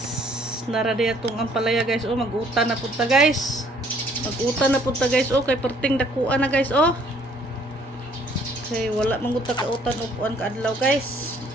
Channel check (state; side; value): normal; both; correlation 0.61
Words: naradi atong ampalaya guys. Oh, mag-utan na punta guys. Mag-utan na punta guys. Oh, kay perting dakuan na guys. Oh. Okay, wala manguta ka utan upuan ka adlaw guys.